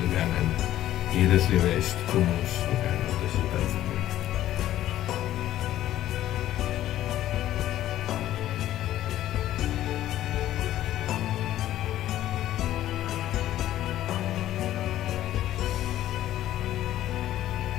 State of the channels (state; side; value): quieter; right; 13.2 dB